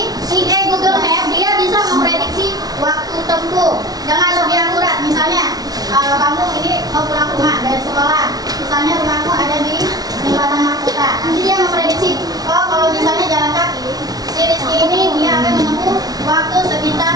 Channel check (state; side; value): late; left; 0.19 ms